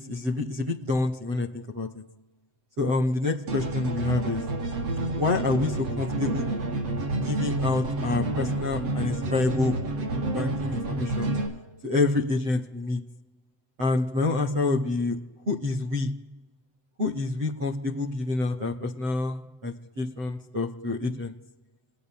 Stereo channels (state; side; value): late; left; 7.9 ms